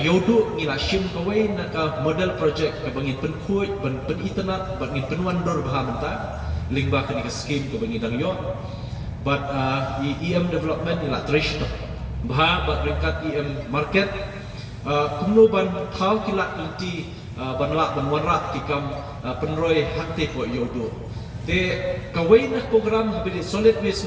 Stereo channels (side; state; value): both; identical; correlation 1.00